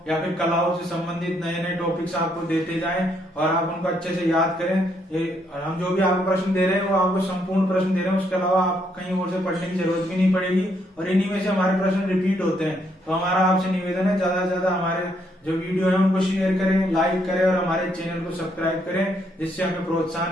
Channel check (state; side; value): normal; both; correlation 0.73